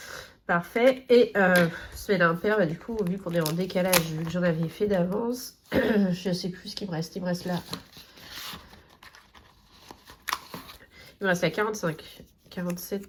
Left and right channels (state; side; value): identical; both; correlation 1.00